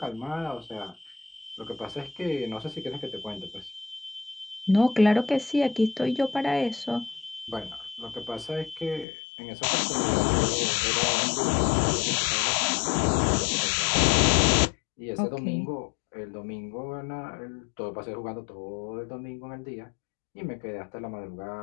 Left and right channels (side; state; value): right; drops out; at 9.1 s